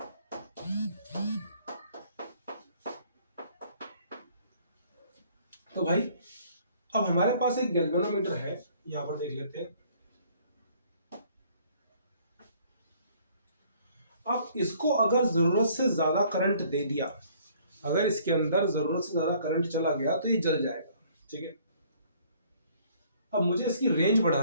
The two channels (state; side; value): inverted; both; correlation -0.59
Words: तो भाई अब हमारे पास एक गैल्वेनोमीटर है, यहां पर देख लेते हैं। अब इसको अगर जरूरत से ज्यादा करंट दे दिया, अगर इसके अंदर जरूरत से ज्यादा करंट चला गया तो ये जल जाएगा। ठीक है, अब मुझे इसकी रेंज